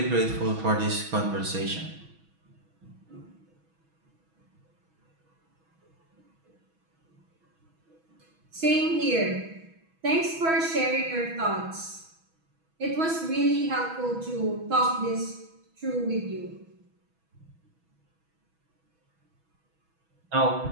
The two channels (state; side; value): late; left; 6.2 ms